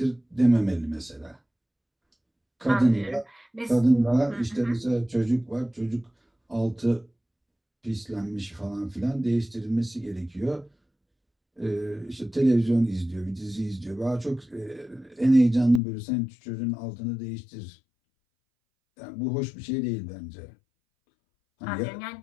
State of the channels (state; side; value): drops out; right; at 15.8 s